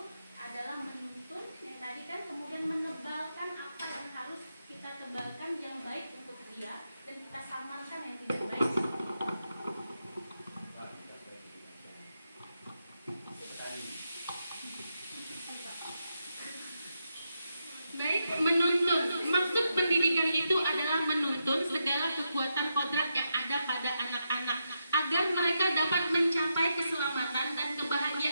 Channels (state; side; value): inverted; both; correlation -0.84